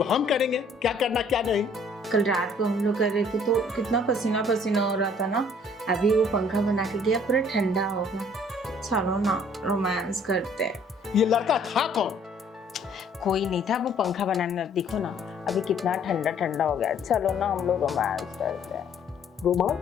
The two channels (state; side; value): normal; both; correlation 0.59